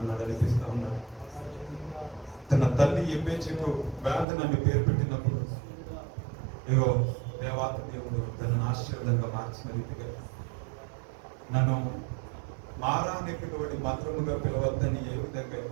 నడిపిస్తూ ఉన్నాడు. తన తల్లి ఎబ్బేచుకు వేదనని పేరు పెట్టినప్పుడు ఇగో దేవాత దేవుడు తనను ఆశీర్వాదంగా మార్చిన రీతిగా నన్ను మారా అని పిలువడి మధురముగా పిలవద్దని ఏ విధంగా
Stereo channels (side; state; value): left; drops out; at 4.2 s